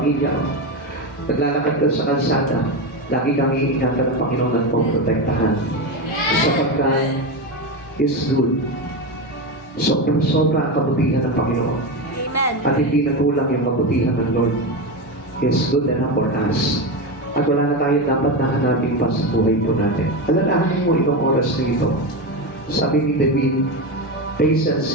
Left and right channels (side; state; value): both; normal; correlation 0.16